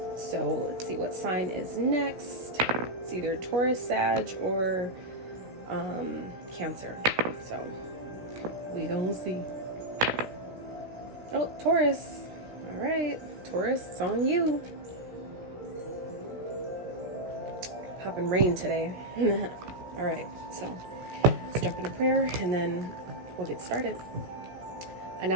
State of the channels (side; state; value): left; late; 16 ms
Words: So let's see what sign is next. It's either Taurus, Sag, or Cancer. So we gonna see. Oh, Taurus. All right, Taurus, it's on you. Popping rain today. All right, so let's jump into prayer and then we'll get started. I